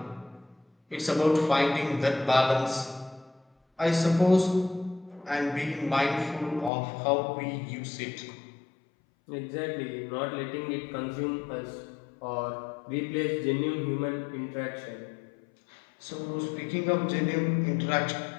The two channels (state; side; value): drops out; right; at 6.7 s